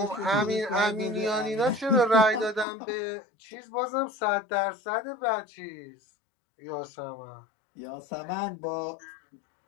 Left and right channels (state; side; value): drops out; right; at 2.7 s